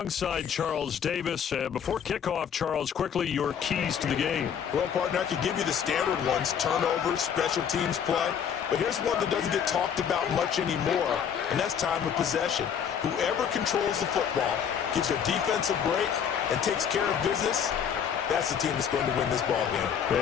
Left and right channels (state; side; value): quieter; right; 8.0 dB